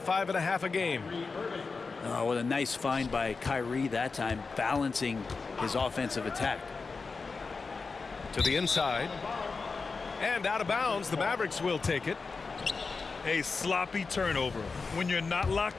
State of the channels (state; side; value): quieter; right; 4.4 dB